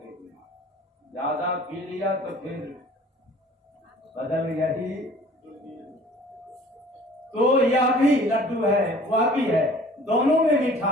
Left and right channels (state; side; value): normal; both; correlation 0.50